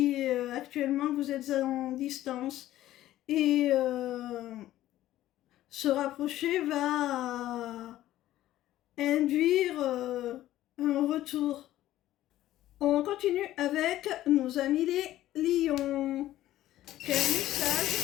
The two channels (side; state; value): right; quieter; 14.2 dB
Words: actuellement vous êtes en distance. Et se rapprocher va induire un retour. On continue avec nos amis les lions. Quel